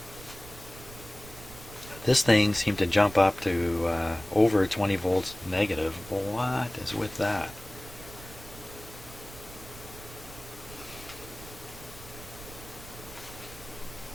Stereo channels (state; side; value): noise; right; rumble, 17 dB below the sound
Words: This thing seemed to jump up to over 20 volts negative. What is with that?